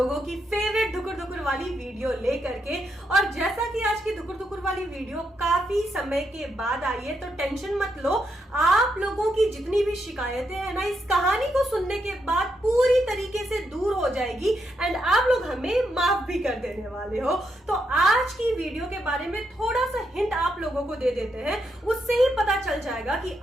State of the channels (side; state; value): both; normal; correlation 0.81